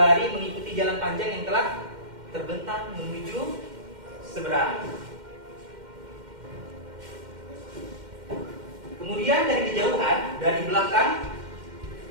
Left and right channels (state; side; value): late; left; 2.1 ms